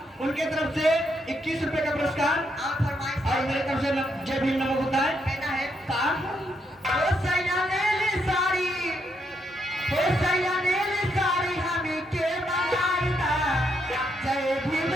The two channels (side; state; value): both; normal; correlation 0.78